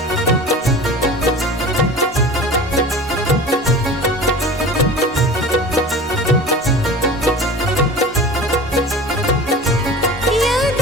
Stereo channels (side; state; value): both; normal; correlation 0.37